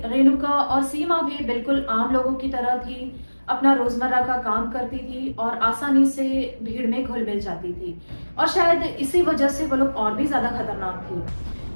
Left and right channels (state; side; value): inverted; both; correlation -1.00